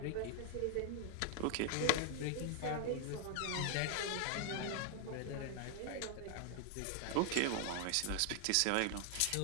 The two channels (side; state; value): both; different; correlation 0.00